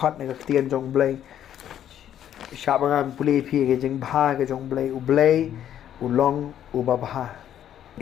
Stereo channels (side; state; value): right; quieter; 10.5 dB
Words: ni ka tien jong Blei. Sya bang pulih pi ka jing bah ka jong Blei u Blei u long u babha.